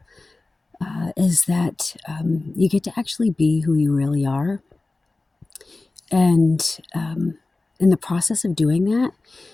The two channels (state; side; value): quieter; right; 3.3 dB